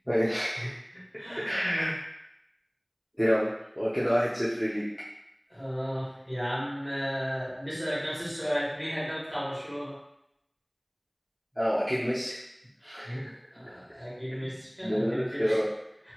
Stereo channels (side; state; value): both; identical; correlation 1.00